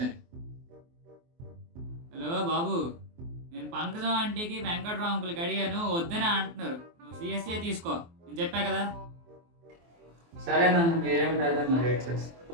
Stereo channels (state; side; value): late; left; 24 ms